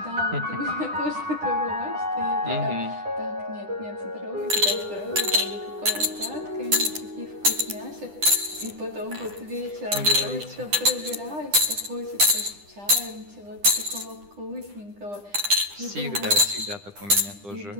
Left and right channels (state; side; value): late; left; 9.9 ms